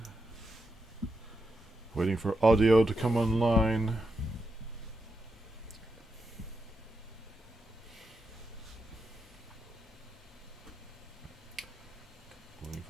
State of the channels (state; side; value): normal; both; correlation 0.85